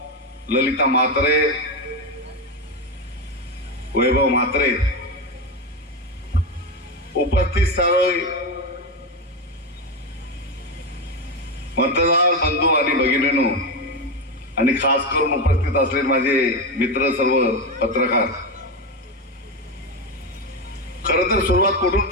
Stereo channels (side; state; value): both; normal; correlation 0.12